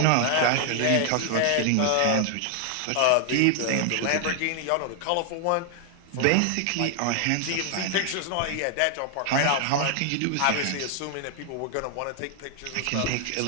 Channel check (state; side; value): different; both; correlation 0.00